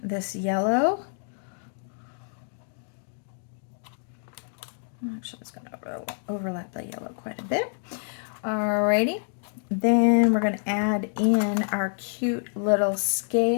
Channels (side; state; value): right; silent; 60 dB below the other